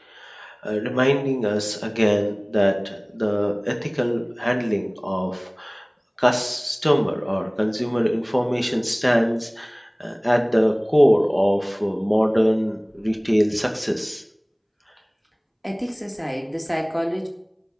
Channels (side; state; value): both; identical; correlation 1.00